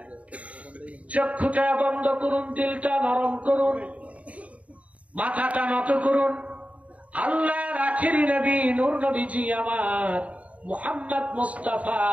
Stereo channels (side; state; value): left; late; 0.067 ms